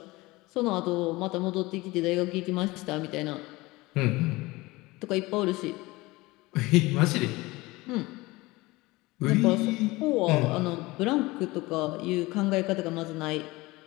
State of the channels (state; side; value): quieter; right; 21.3 dB